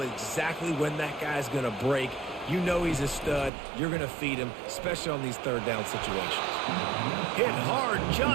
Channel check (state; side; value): drops out; left; at 3.5 s